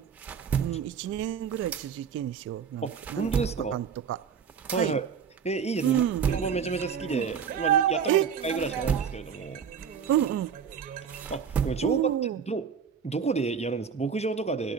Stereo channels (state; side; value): quieter; left; 6.9 dB